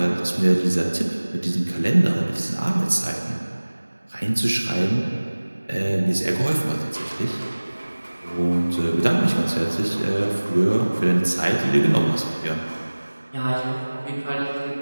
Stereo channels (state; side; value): inverted; both; correlation -1.00